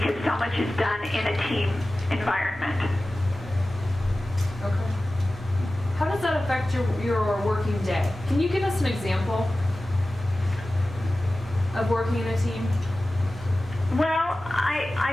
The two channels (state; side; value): normal; both; correlation 0.96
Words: so much is done in a team environment. Okay. How does that affect your working day? Can you give us an example of working in a team? Well,